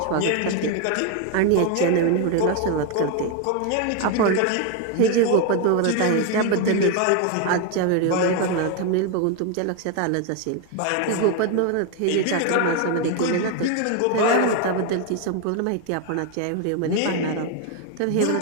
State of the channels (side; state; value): both; different; correlation 0.01